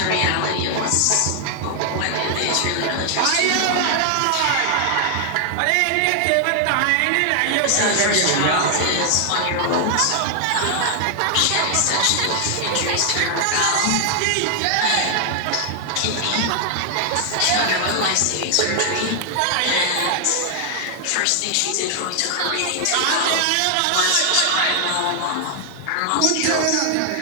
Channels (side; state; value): both; different; correlation 0.00